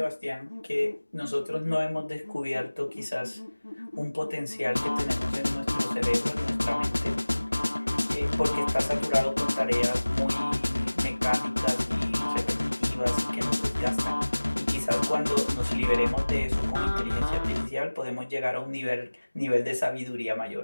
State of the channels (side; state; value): both; inverted; correlation -1.00